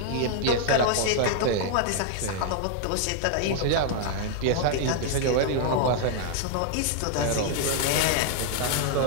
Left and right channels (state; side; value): different; both; correlation 0.00